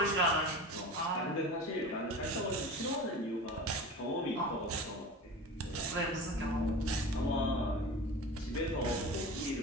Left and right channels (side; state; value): both; normal; correlation 0.33